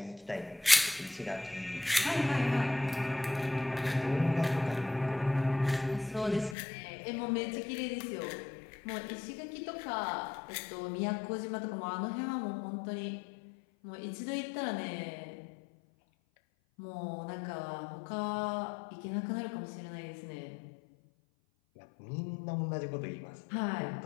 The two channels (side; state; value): right; drops out; at 6.6 s